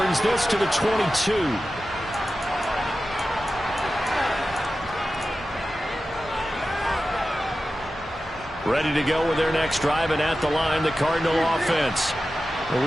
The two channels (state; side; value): normal; both; correlation 0.93